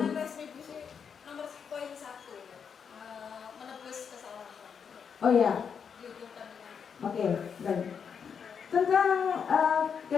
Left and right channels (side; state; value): right; quieter; 6.8 dB